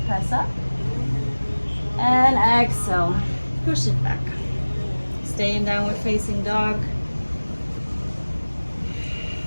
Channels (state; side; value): inverted; both; correlation -1.00